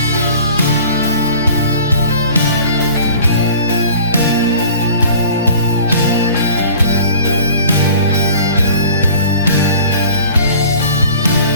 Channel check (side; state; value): both; inverted; correlation -0.45